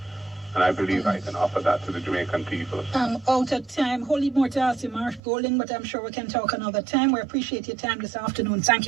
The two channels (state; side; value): drops out; left; at 5.2 s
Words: And I believe I can offer that to the Jamaican people. Out of time. Wholly more to ask you, Mark Golding, but I'm sure we can talk another time. We appreciate your time this afternoon. Thank